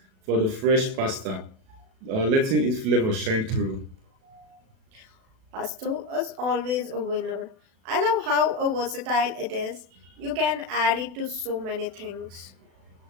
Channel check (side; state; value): left; late; 36 ms